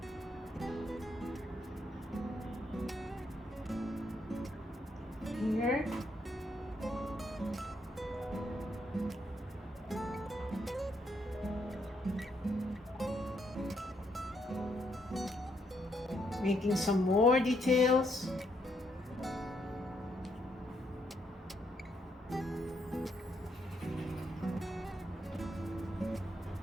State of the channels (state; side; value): normal; both; correlation 0.75